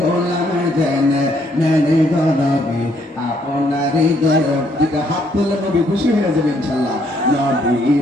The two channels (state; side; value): normal; both; correlation 0.69